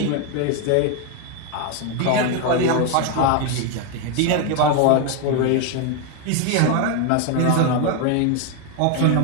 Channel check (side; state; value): both; different; correlation 0.01